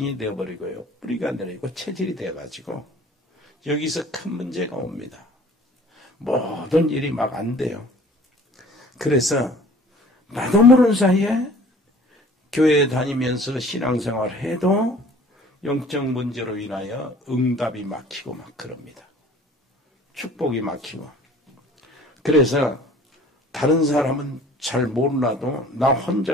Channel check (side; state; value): both; normal; correlation 0.49